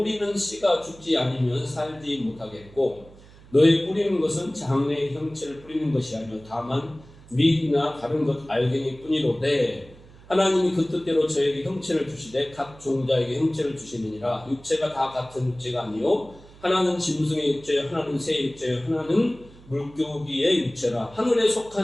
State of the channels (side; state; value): right; noise; hum, 22 dB below the sound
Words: 씨가 죽지 않으면 살지 못하겠고 너의 뿌리는 것은 장래의 형체를 뿌리는 것이 아니요 다만 밀이나 다른 것 알갱이 뿐이로되 하나님이 그 뜻대로 저에게 형체를 주시되 각 종자에게 형체를 주시느니라. 육체가 다 같은 육체가 아니요 하나는 짐승의 육체요 하나는 새의 육체요 하나는 물고기의 육체라. 하늘에